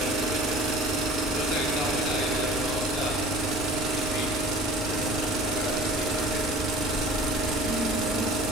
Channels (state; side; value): normal; both; correlation 0.45